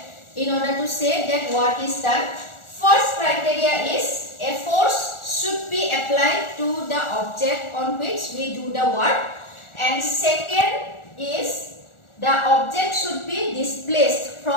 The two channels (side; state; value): right; late; 1.4 ms